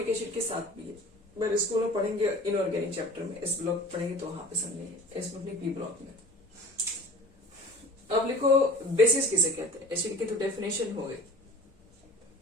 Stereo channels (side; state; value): both; normal; correlation 0.41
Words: एसिड के साथ भी है, पर स्कूल में पढ़ेंगे इनऑर्गेनिक चैप्टर में, इस ब्लॉक पढ़ेंगे तो वहां पे समझेंगे, इसमें अपनी P ब्लॉक में। अब लिखो बेसिस किसे कहते हैं, एसिड की तो डेफिनेशन हो गई।